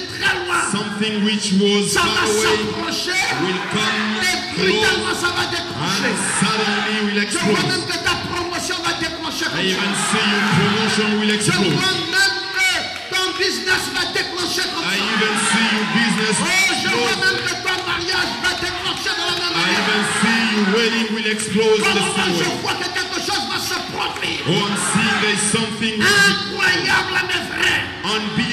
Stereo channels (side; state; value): both; identical; correlation 1.00